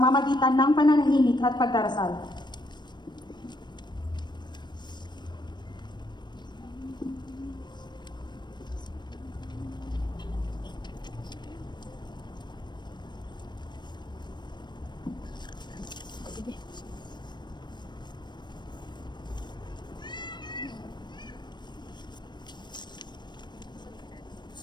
ng pananahimik at pagdarasal.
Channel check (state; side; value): late; right; 0.22 ms